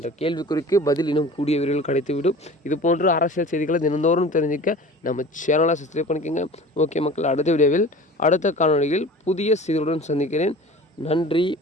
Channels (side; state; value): both; normal; correlation 0.40